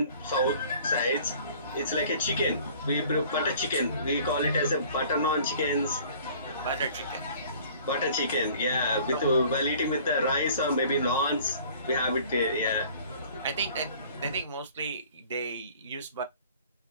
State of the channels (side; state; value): both; inverted; correlation -0.51